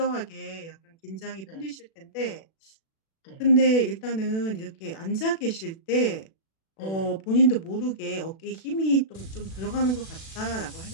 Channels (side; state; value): right; late; 36 ms